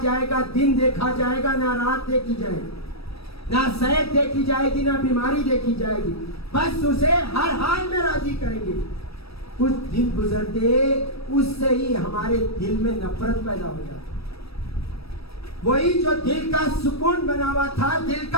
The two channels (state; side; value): late; right; 0.78 ms